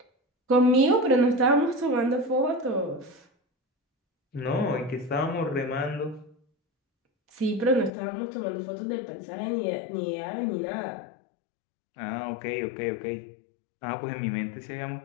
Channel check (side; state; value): right; drops out; at 7.9 s